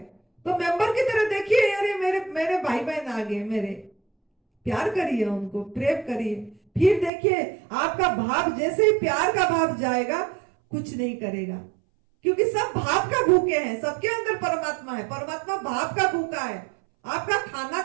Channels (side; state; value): left; drops out; at 7.1 s